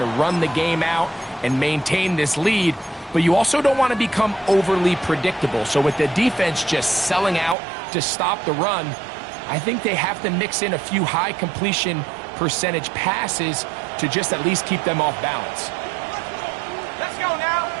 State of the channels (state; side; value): drops out; left; at 7.6 s